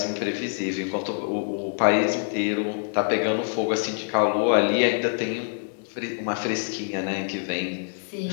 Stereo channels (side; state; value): right; silent; 61 dB below the other